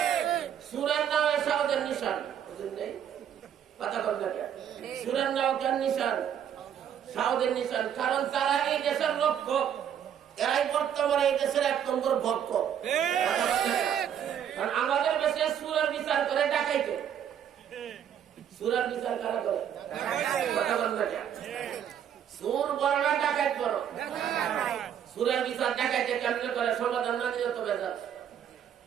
সুরের নামে সাউদের নিশান, বুঝলেন নাই? কথা বল না কেন? সুরের নাম কেন নিশান? সাউদের নিশান। কারণ তারা এই দেশের লক্ষ্য, এরাই বর্তমানে এই দেশের 1 নম্বর ভক্ত। কারণ আমাদের দেশে সুরের বিচার করে ডাকাইতে। সুরের বিচার কারা করে? কথা বল না কেন? সুর বড় না ডাকাইত বড়? সুরের বিচার ডাকাইতে কেমনে করে? সমাধান না দিলে তো বেজার।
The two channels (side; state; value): left; quieter; 9.2 dB